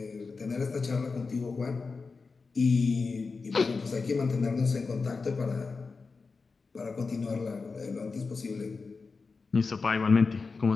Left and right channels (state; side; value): quieter; right; 4.4 dB